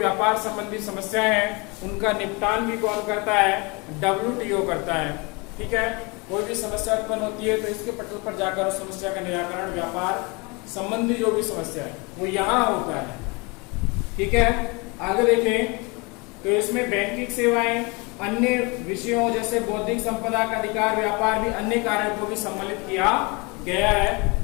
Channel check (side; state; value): right; quieter; 28.4 dB